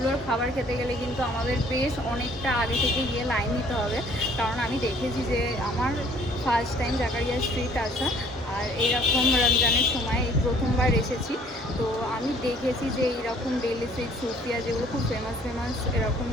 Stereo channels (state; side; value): normal; both; correlation 0.57